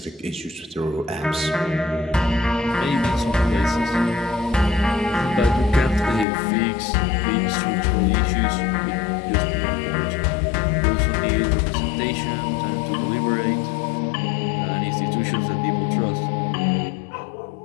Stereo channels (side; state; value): right; drops out; at 6.2 s